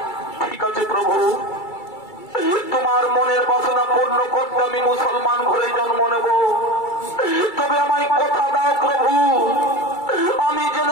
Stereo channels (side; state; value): right; late; 2.3 ms